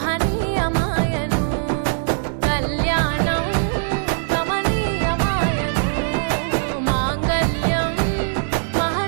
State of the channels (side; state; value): left; silent; digital silence